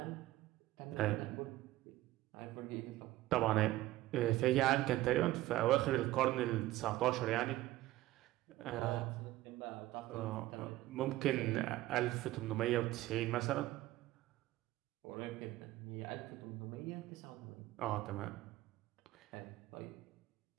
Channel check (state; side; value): quieter; left; 16.4 dB